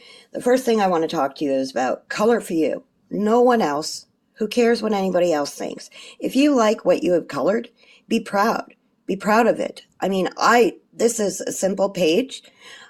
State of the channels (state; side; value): identical; both; correlation 1.00